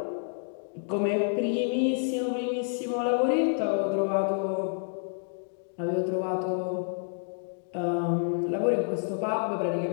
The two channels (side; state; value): right; silent; digital silence